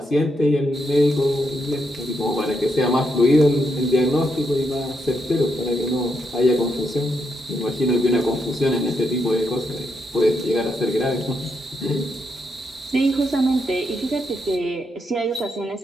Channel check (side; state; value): both; normal; correlation 0.80